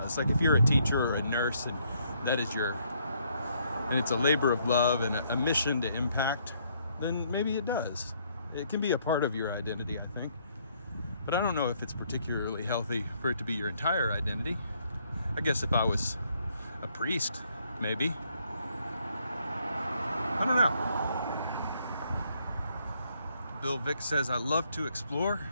Like if you're a teacher or a nurse and that is and it's a labor of love and a mission to impact, then maybe it does. It can be a part of your identity, I think. But I don't know if it's particularly healthy for it to be your entire identity. I guess if I was a priest, maybe. I don't know. Bill Vick says, I love to explore.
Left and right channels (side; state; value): both; inverted; correlation -0.69